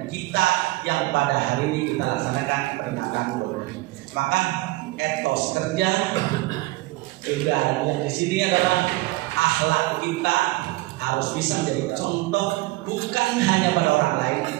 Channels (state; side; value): quieter; left; 20.4 dB